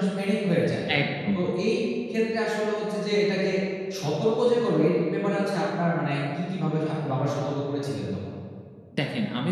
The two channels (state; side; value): identical; both; correlation 1.00